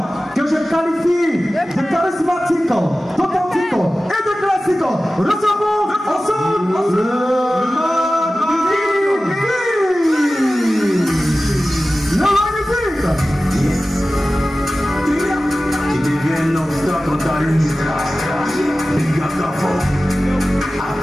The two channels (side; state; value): both; normal; correlation 0.96